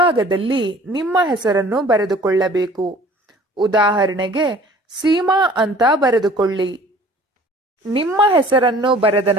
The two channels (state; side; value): normal; both; correlation 0.50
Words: ನಿಮ್ಮ ಹೆಸರನ್ನು ಬರೆದುಕೊಳ್ಳಬೇಕು. ಉದಾಹರಣೆಗೆ, ಸೀಮಾ ಅಂತ ಬರೆದುಕೊಳ್ಳಿ. ನಿಮ್ಮ ಹೆಸರನ್ನು ಬರೆದ